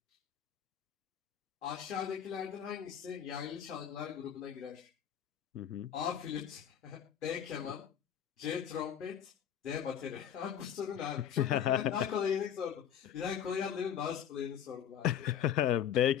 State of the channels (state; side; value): quieter; right; 9.3 dB